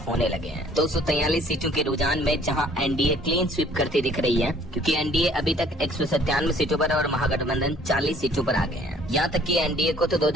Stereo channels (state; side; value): normal; both; correlation 0.57